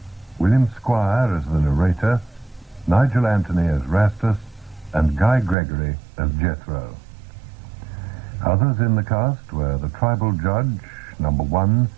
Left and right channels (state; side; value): drops out; left; at 5.6 s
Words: William Squire as the narrator, Nigel Anthony as Rastus, and Guy Gregory as Jethro. Others in the cast were the tribal judge, number 1,